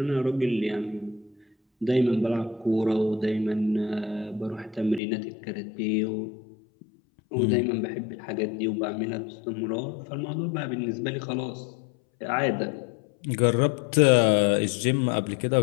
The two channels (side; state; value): right; drops out; at 5.0 s